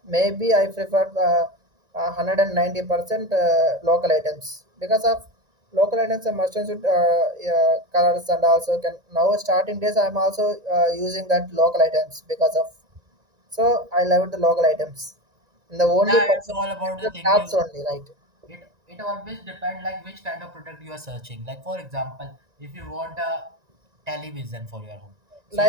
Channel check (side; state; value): left; late; 1.9 ms